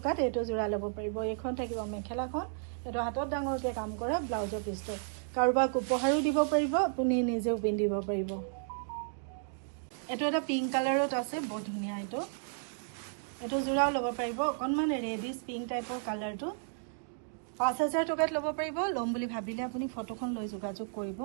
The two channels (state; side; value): silent; left; digital silence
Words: এইটো যোৰা ল'ব পাৰিব। এইখন থাকিব মেখেলাখন, এইটো হাতত ডাঙৰকৈ কাম কৰা ব্লাউজৰ পিচটো। কাৰোবাক উপহাৰো দিব পাৰিব, আপুনি নিজেও পিন্ধিব পাৰিব। এইটো এটা পিংক কালাৰত আছে, বৰ ধুনীয়া। এইটো যোৰাও ল'ব পাৰিব। অকণমান ৰেডিছ পিংক টাইপৰ কালাৰটো, 5000 টকাত ল'ব পাৰিব। ল'ম বুলি ভাবিলে আপুনি ফটোখন লৈ যোগাযোগ কৰিব।